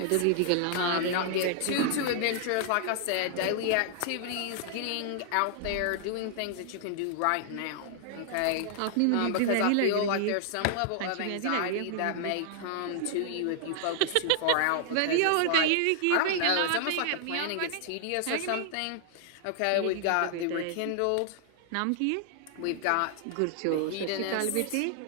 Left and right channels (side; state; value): both; different; correlation 0.00